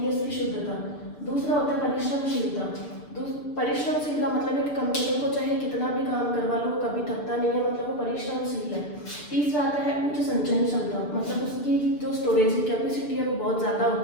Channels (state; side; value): late; right; 6.8 ms